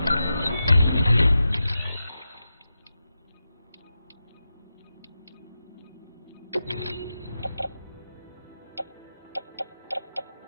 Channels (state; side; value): inverted; both; correlation -0.90